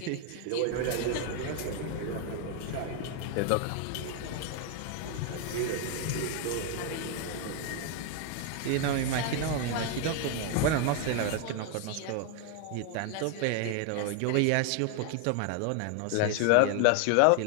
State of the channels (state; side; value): different; both; correlation 0.00